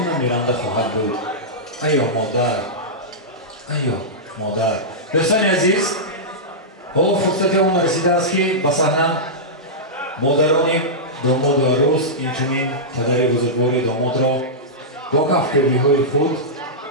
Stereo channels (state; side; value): normal; both; correlation -0.12